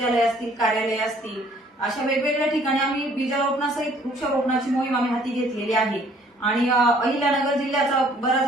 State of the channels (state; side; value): normal; both; correlation 0.59